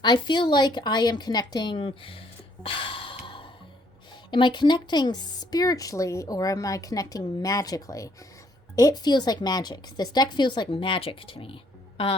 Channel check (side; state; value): both; normal; correlation 0.67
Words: I feel like I am connecting. Am I connecting spiritually or am I connecting magically? It feels like magic. This deck feels like magic to me.